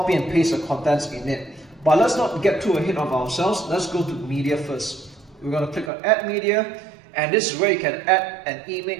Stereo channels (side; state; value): left; drops out; at 5.9 s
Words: and paste the contents in it. But let's not get too ahead of ourselves. Let's go to media first. We're going to click on add media, and this is where you can add an